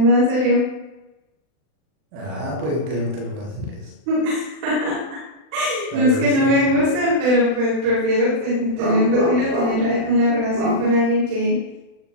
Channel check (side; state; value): left; late; 40 ms